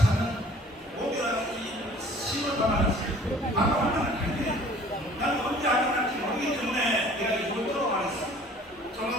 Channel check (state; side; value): normal; both; correlation 0.51